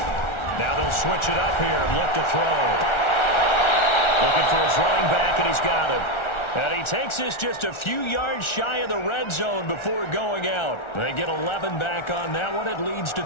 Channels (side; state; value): right; late; 1.4 ms